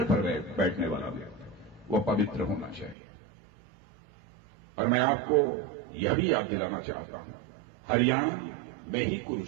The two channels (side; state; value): left; drops out; at 3.0 s